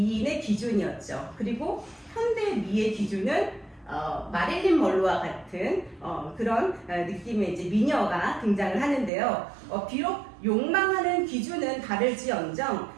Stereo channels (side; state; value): left; drops out; at 9.1 s